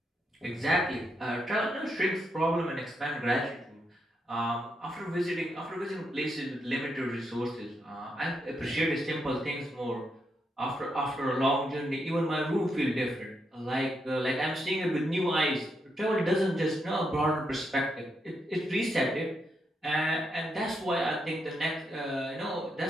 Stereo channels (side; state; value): both; normal; correlation 0.81